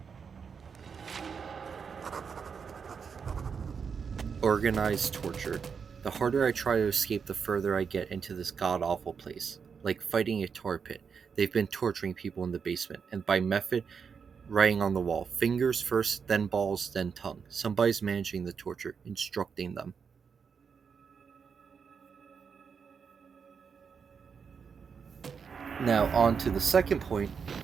Organized torture. The harder I try to escape, the further I get into this god-awful place. Like fighting a tar pit. They've been torturing people in the basement, and by method, writing on the wall. Fingers first, then balls, then tongue. Somebody's managing the torture, instructing them. Now, on to the second point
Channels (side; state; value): left; quieter; 6.2 dB